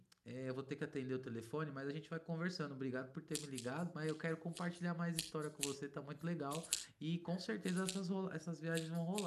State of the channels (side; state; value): both; identical; correlation 1.00